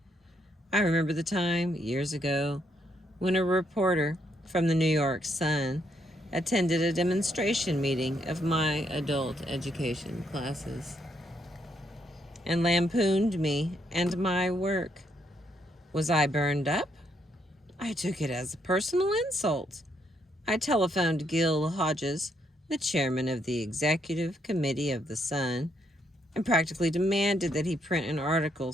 I remember the time, years ago, when a reporter from the New York Sun attended a demonstration meeting of my adult education classes and lampooned me and my work. Was I burned up? I took it as a personal insult. I telephoned Gil Hodges, the chairman of the executive committee of the Sun, and practically demanded that he print an article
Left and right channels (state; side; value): normal; both; correlation 0.75